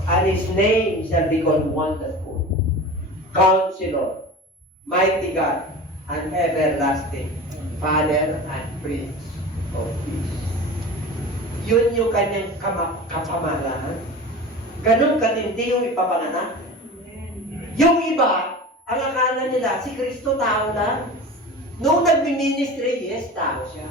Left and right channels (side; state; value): both; normal; correlation 0.34